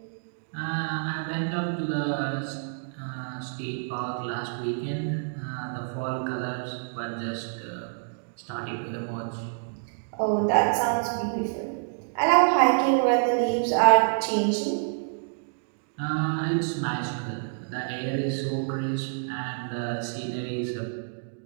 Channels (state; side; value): silent; left; digital silence